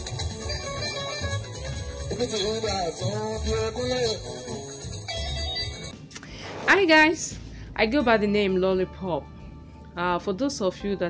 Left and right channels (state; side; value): identical; both; correlation 1.00